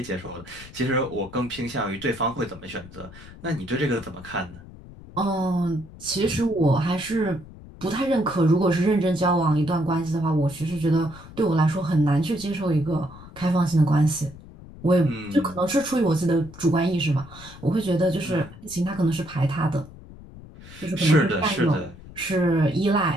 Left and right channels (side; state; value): left; noise; rumble, 18 dB below the sound